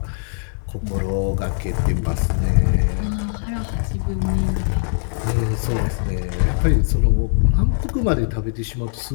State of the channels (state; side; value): silent; right; digital silence